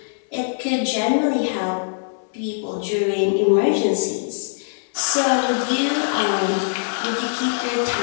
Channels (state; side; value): silent; right; digital silence